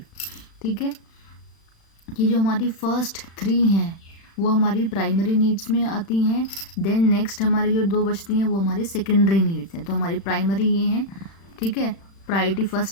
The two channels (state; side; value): late; right; 36 ms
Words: ठीक है, ये जो हमारी फर्स्ट 3 हैं वो हमारी प्राइमरी नीड्स में आती हैं। देन नेक्स्ट हमारी जो 2 बचती हैं वो हमारी सेकेंडरी नीड्स हैं। तो हमारी प्राइमरी ये हैं, ठीक है, प्रायोरिटी